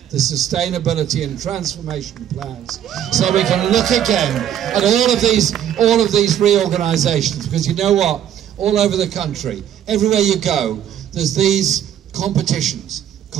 the sustainability and transformation plans, so we can look again at all of these reorganisations. Because you know what? All over the country, everywhere you go, there's these competitions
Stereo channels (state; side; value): quieter; left; 10.3 dB